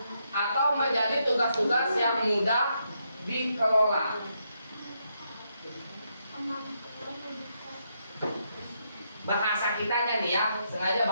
atau menjadi tugas-tugas yang mudah dikelola. Bahasa kitanya nih ya, sengaja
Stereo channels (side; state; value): both; inverted; correlation -0.79